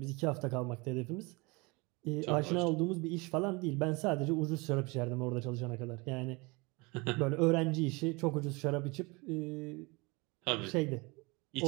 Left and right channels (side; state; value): left; quieter; 26.8 dB